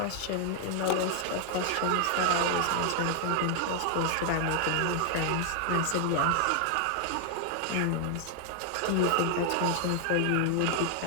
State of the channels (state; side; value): different; both; correlation 0.00